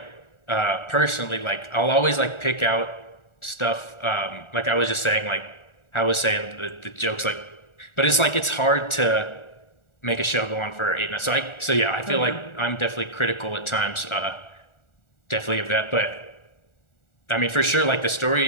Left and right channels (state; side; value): late; right; 1.4 ms